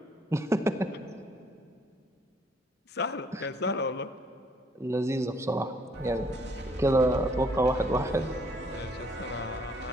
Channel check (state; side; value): normal; both; correlation 0.65